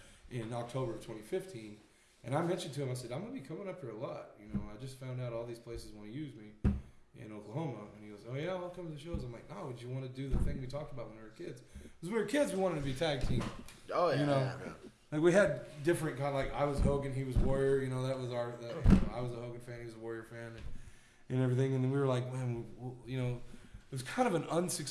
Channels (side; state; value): both; identical; correlation 1.00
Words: in October of 2015, and I mentioned to him, I said, I'm going to be coming up here a lot. You know, I just found out all these places want to use me in Oklahoma, and he goes, oh yeah, I'll come to the shows. I'm like, no, would you want to do the thing we talked about when we were kids? Because when we were kids, we wanted to be tag team. Oh yeah. You know, yeah. like we had different kind of like I was Hogan, he was Warrior. You know, that was our. I was a Hogan fan, he was a Warrior fan, and everything. And then we were like, man, you know, it was kind of an